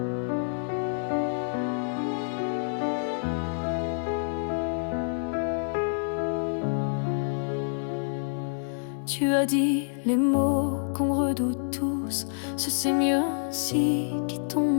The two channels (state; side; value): silent; right; digital silence